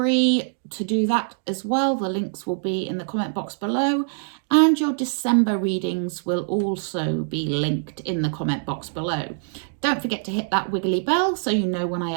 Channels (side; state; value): left; silent; digital silence